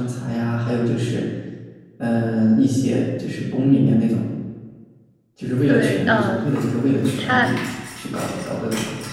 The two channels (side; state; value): both; identical; correlation 1.00